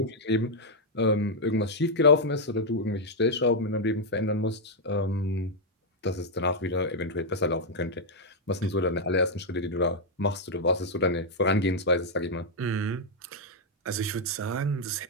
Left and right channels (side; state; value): both; normal; correlation -0.02